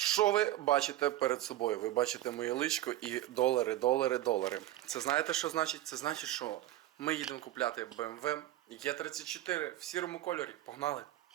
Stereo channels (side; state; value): left; quieter; 14.6 dB